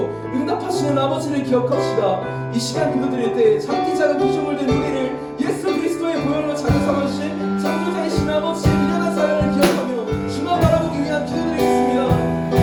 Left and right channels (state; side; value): identical; both; correlation 1.00